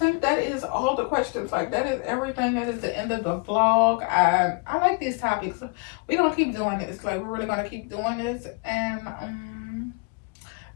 think that is all the questions. Like, that is everything. That is the end of the vlog. I like these topics. We're gonna keep doing this. Like, we're really gonna keep doing this. And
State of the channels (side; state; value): right; quieter; 33.7 dB